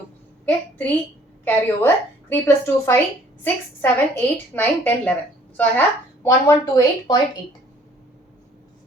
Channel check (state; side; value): normal; both; correlation 0.58